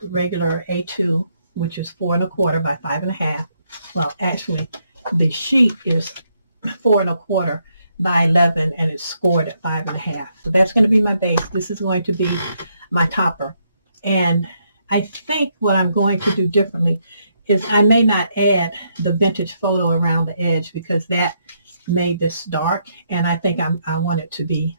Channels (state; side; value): inverted; both; correlation -0.76